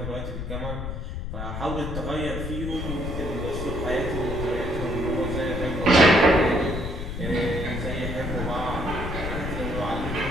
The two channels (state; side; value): noise; left; rumble, 5 dB below the sound